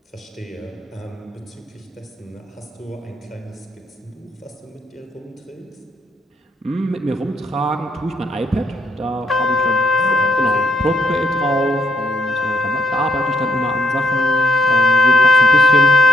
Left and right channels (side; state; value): both; normal; correlation 0.74